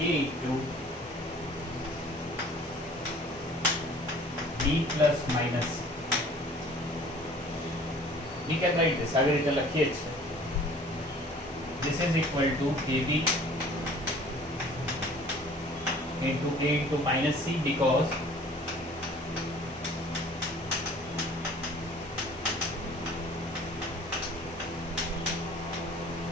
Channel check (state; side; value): normal; both; correlation 0.50